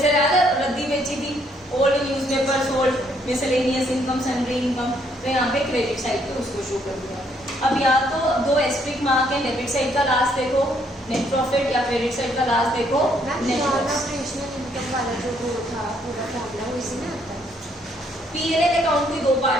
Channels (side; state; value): both; normal; correlation 0.69